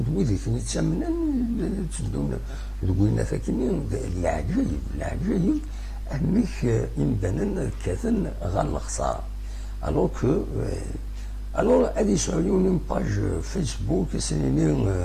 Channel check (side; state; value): both; identical; correlation 1.00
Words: دويدي فين يتسمنن تدون دوينا ثاكني العجايب انك يمدن كاثن غال الخساره الوغ كو الوغ هادي يسعوني باج فيسبوك